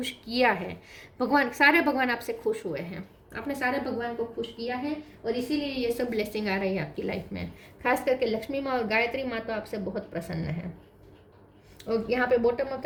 किया है। सारे भगवान आपसे खुश हुए हैं, आपने सारे भगवान को खुश किया है, और इसीलिए ये सब ब्लेसिंग आ रही है आपकी लाइफ में। खास करके लक्ष्मी माँ और गायत्री माँ तो आपसे बहुत प्रसन्न है। और यहाँ पे बॉटम ऑफ द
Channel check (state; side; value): identical; both; correlation 1.00